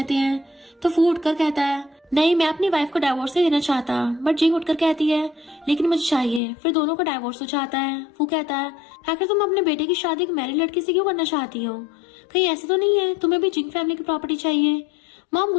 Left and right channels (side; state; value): right; drops out; at 6.4 s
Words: हैं तो फू उठकर कहता है नहीं मैं अपनी वाइफ को डिवोर्स नहीं देना चाहता। बट जिंग उठकर कहती है लेकिन मुझे चाहिए। फिर दोनों को डिवोर्स हो जाता है। फू कहता है आखिर तुम अपने बेटे की शादी एक मैरिड लड़की से क्यों करना चाहती हो? कहीं ऐसे तो नहीं है तुम्हें भी जिंग फैमिली की प्रॉपर्टी चाहिए? मॉम